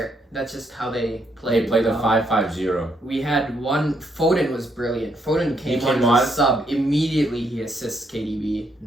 That's just how they played. They played a 5-5-0. We had one. Foden was brilliant. Foden came on as a sub. Immediately he assists KDB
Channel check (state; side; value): normal; both; correlation 0.75